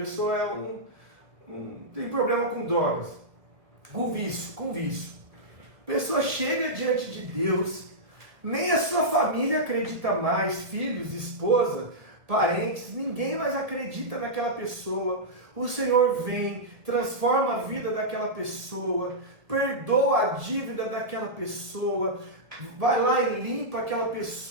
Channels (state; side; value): late; left; 1.7 ms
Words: tem problema com drogas, com vício. A pessoa chega diante de Deus, nem a sua família acredita mais, filhos, esposa, parentes, ninguém mais acredita naquela pessoa. O Senhor vem, transforma a vida daquela pessoa, perdoa a dívida daquela pessoa, vai lá e limpa aquela